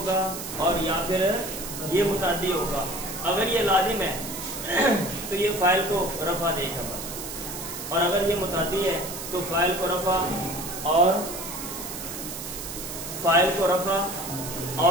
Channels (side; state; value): right; noise; hiss, 8 dB below the sound